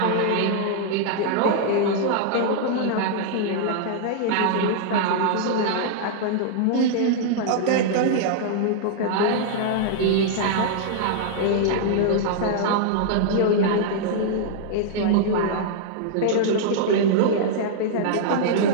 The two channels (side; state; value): both; different; correlation -0.01